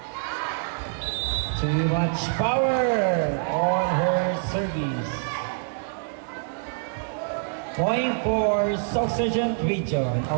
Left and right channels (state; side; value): silent; left; digital silence